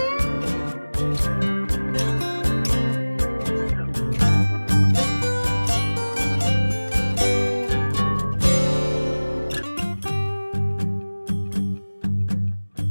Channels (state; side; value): inverted; both; correlation -1.00